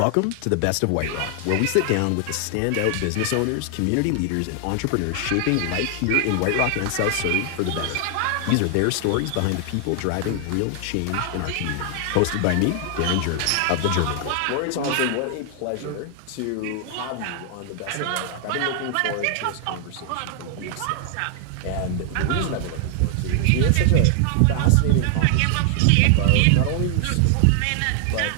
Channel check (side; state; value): both; different; correlation 0.00